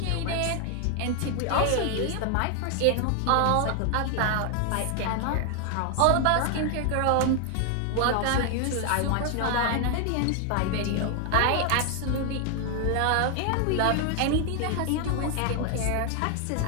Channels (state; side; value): different; both; correlation 0.00